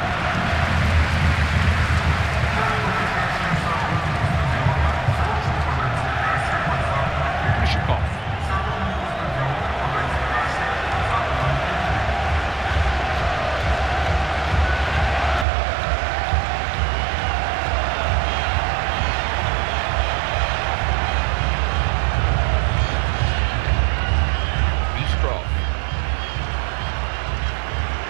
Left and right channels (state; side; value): drops out; left; at 15.5 s